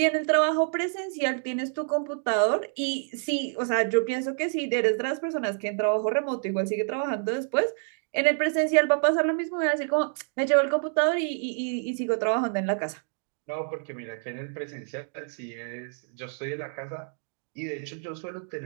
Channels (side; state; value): left; silent; 60 dB below the other